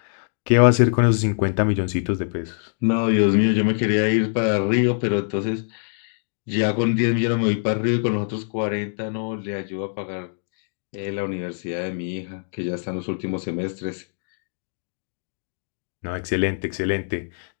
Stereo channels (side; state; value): right; silent; digital silence